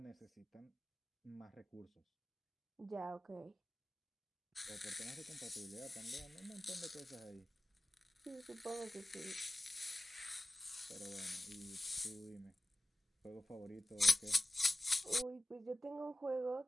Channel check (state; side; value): normal; both; correlation 0.96